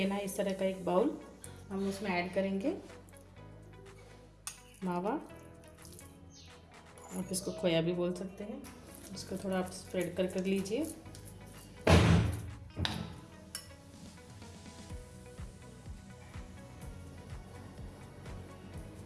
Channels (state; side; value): identical; both; correlation 1.00